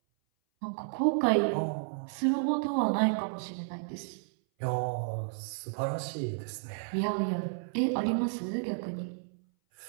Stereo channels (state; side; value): silent; left; 57 dB below the other